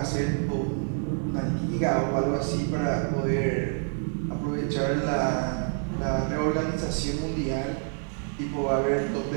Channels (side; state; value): left; silent; 55 dB below the other